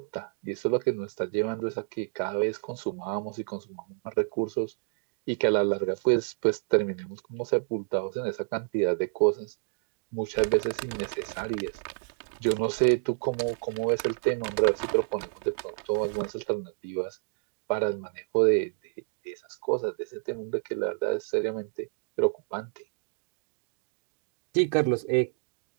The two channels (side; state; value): left; silent; digital silence